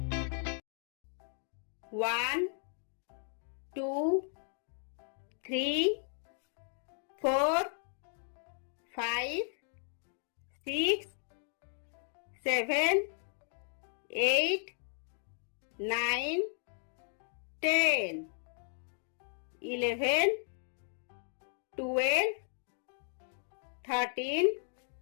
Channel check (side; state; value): right; silent; 54 dB below the other